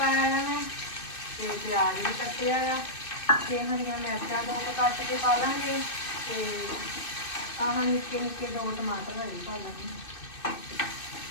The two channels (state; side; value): late; right; 2.6 ms